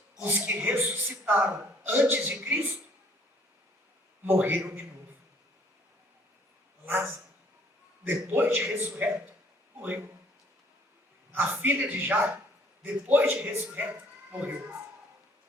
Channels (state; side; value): normal; both; correlation 0.60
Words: os que ressuscitaram antes de Cristo morreram de novo. Lázaro, depois de ressurreto, morreu. A filha de Jairo, depois de ressurreto, morreu.